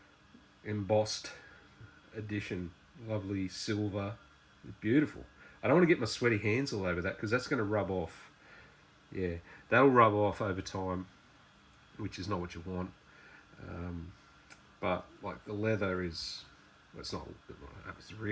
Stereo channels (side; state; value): both; identical; correlation 1.00